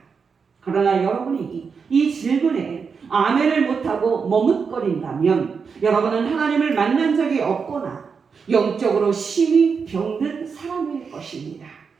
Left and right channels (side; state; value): left; quieter; 5.7 dB